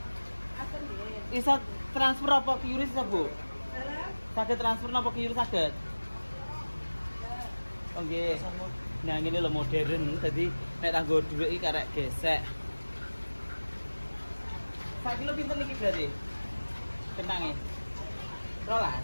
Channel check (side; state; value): both; inverted; correlation -1.00